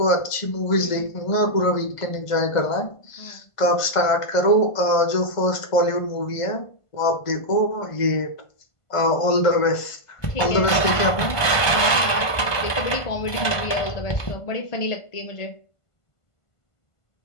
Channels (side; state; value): right; late; 1.5 ms